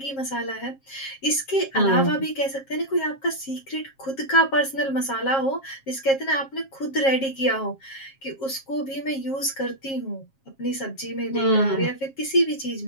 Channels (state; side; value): late; right; 7.4 ms